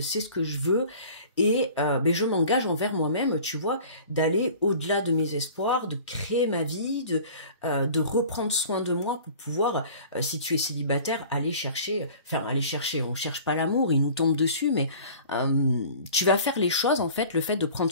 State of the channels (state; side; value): inverted; both; correlation -0.44